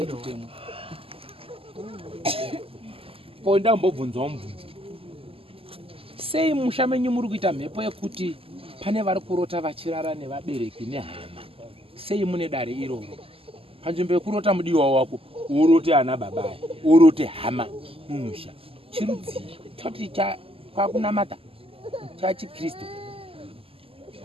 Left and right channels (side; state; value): left; late; 0.27 ms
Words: kutemwa. Ko ndambobvunzawo mubvunzo. Sei musha menyu muri kuita mhepo yekuti pane vari kurota vachirara nevabereki nehama? Sei mune dare iroro? Panzvimbo yekurota mudiwa wako urote ana babaya, urote hama mumusha. Chirudziro choti kwakunamata chachiKristu.